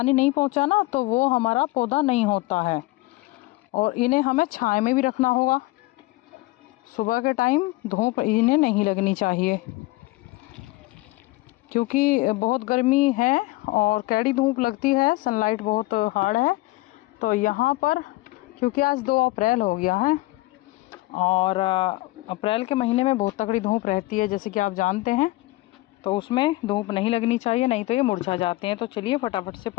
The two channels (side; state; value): right; quieter; 20.1 dB